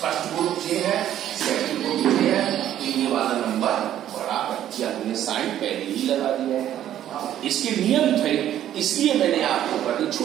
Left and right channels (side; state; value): left; quieter; 11.5 dB